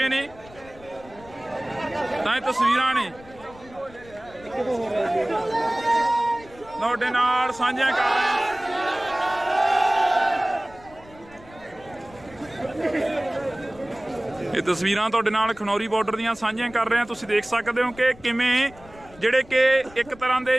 ਨੇ। ਤਾਂ ਇਹ ਤਸਵੀਰਾਂ ਨੇ ਤੁਹਾਡੇ ਨਾਲ ਸਾਂਝੀਆਂ ਕਰ ਰਹੇ ਹਾਂ। ਇਹ ਤਸਵੀਰਾਂ ਤੁਹਾਡੇ ਨਾਲ ਖਨੌਰੀ ਬਾਰਡਰ ਦੀਆਂ ਸਾਂਝੀਆਂ ਕਰ ਰਹੇ ਹਾਂ। ਤੁਸੀਂ ਦੇਖ ਸਕਦੇ ਹੋ ਕਿ ਕਿਵੇਂ ਜਿਹੜੇ ਕਿ ਇੱਕ ਤਰ੍ਹਾਂ ਦੇ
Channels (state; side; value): noise; left; rumble, 22 dB below the sound